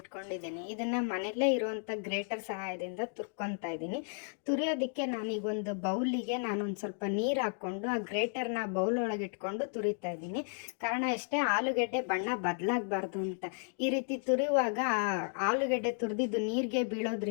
ಇದನ್ನು ಮನೆಯಲ್ಲೇ ಇರುವಂಥ ಗ್ರೇಟರ್ ಸಹಾಯದಿಂದ ತುರ್ಕೊತಾ ಇದ್ದೀನಿ. ತುರಿಯೋದಕ್ಕೆ ನಾನೀಗ ಒಂದು ಬೌಲಿಗೆ ನಾನೊಂದು ಸ್ವಲ್ಪ ನೀರು ಹಾಕ್ಕೊಂಡು ಆ ಗ್ರೇಟರ್ನ ಬೌಲ್ ಒಳಗೆ ಇಟ್ಕೊಂಡು ತುರಿತಾ ಇದ್ದೀನಿ. ಕಾರಣ ಅಷ್ಟೇ, ಆಲೂಗೆಡ್ಡೆ ಬಣ್ಣ ಬದಲಾಗಬಾರ್ದು ಅಂತ. ಈ ರೀತಿ ತುರಿಯುವಾಗ ಆಲೂಗೆಡ್ಡೆ ತುರಿದಿದ್ದು ನೀರಿಗೆ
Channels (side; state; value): right; silent; 55 dB below the other